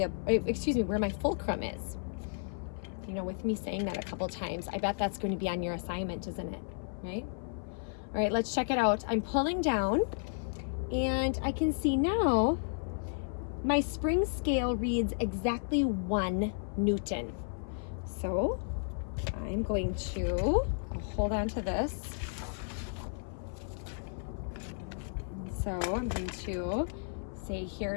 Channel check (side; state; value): right; silent; 56 dB below the other